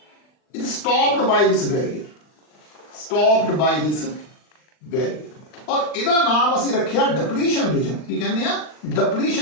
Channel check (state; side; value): late; right; 39 ms